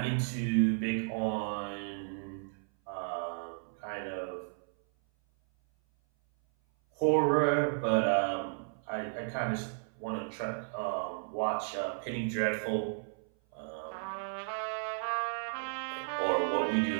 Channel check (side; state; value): left; silent; 55 dB below the other